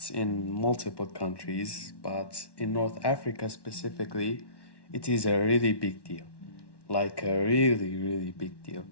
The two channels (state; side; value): late; right; 1.1 ms